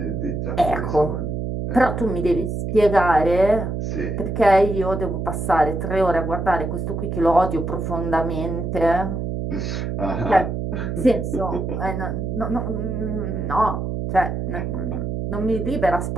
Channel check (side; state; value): right; noise; hum, 3 dB below the sound